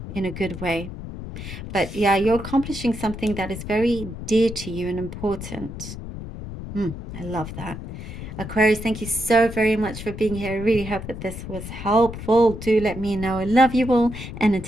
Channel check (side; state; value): left; noise; rumble, 9 dB below the sound